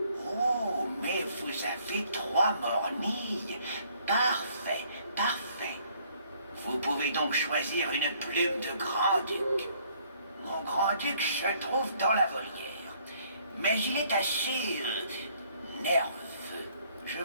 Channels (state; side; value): inverted; both; correlation -0.63